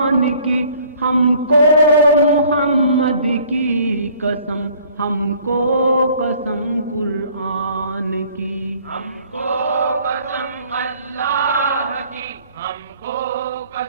کی، ہم کو محمد کی قسم، ہم کو قسم قرآن کی، ہم کو قسم اللہ کی، ہم کو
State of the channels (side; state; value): both; inverted; correlation -0.56